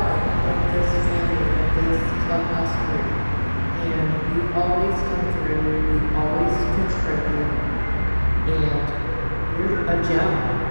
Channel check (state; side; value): inverted; both; correlation -1.00